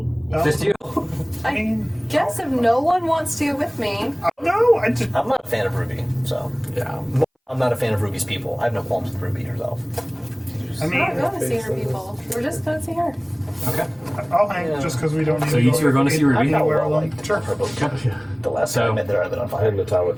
Just you? I mean, Guess if no one wants to go with me. no, I just I'm not a fan of Ruby, so. Yeah. I'm not a fan of Ruby's people. I have no qualms with Ruby herself. I We're not mean, going to see her people. We're just going to see her. Okay. I'll hang just because we don't need So to you go two are going to see Ruby? anywhere Well, alone. like, Sure. her boat. The last time I met there, I lit on I'm fire. in the town with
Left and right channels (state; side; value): identical; both; correlation 1.00